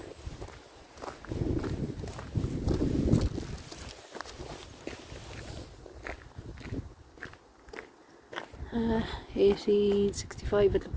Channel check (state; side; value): identical; both; correlation 1.00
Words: Uh, 1865 it